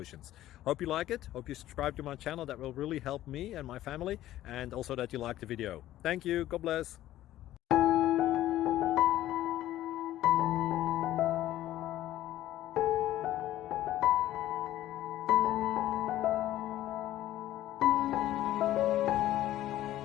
Hope you like it, hope you subscribe to my channel. That will really help me and my family, and also that you like the video. Thank you, God bless.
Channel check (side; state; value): right; quieter; 14.0 dB